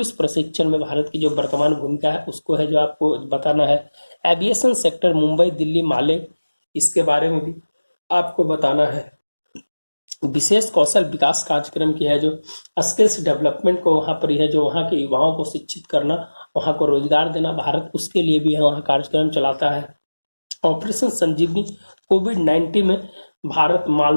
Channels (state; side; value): inverted; both; correlation -1.00